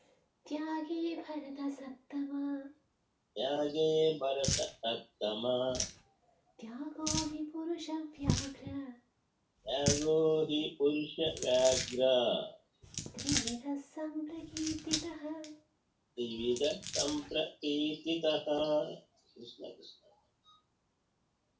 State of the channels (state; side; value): identical; both; correlation 1.00